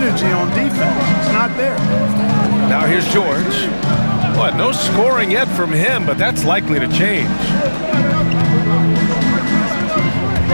on defense. It's not there. Now here's George. What, no scoring yet from him, but that's likely to change.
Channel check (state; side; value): inverted; both; correlation -1.00